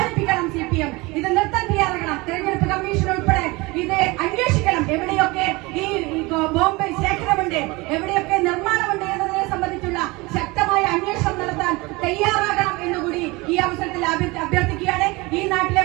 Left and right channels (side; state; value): left; quieter; 23.7 dB